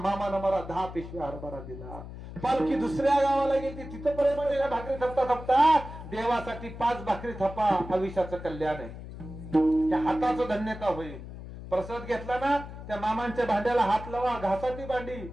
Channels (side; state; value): left; noise; hum, 12 dB below the sound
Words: मला 10 पिशवी हरभरा दिला. पालखी दुसऱ्या गावाला गेली, तिथं पर्यंत भाकरी थपता थपता देवासाठी 5 भाकरी थपा, आयुष्याचं कल्याण आहे, त्या हाताचं धन्यता होईल. प्रसाद घेतला ना, त्या मामांच्या भांड्याला हात लावा, घासा ती भांडी.